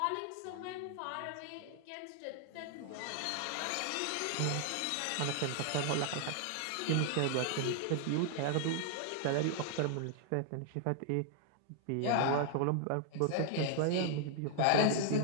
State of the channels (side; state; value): both; different; correlation 0.00